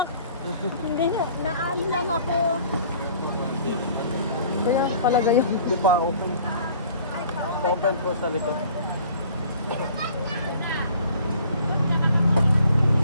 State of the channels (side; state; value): both; inverted; correlation -0.53